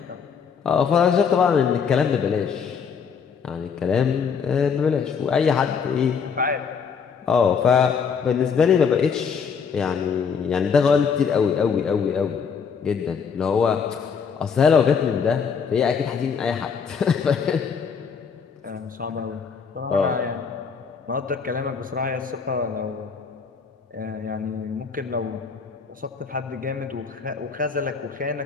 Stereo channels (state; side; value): quieter; right; 6.2 dB